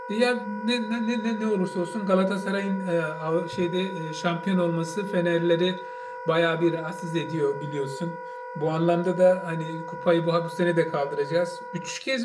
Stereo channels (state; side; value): identical; both; correlation 1.00